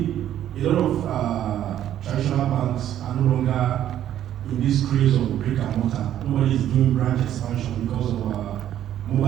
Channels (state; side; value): quieter; left; 11.3 dB